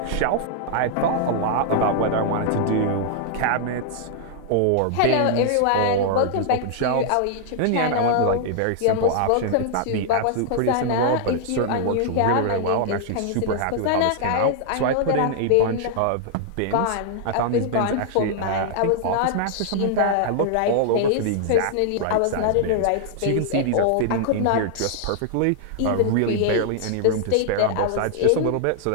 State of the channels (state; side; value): different; both; correlation -0.01